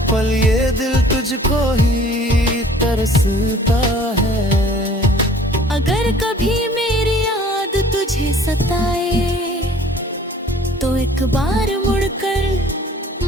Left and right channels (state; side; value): normal; both; correlation 0.52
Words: पल ये दिल तुझको ही तरसता है। अगर कभी मेरी याद तुझे सताए तो एक बार मुड़कर